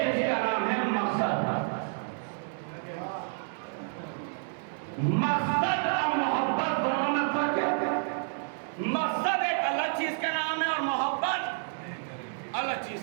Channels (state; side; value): silent; left; digital silence